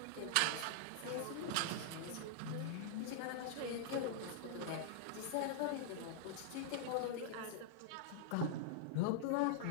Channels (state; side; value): different; both; correlation -0.01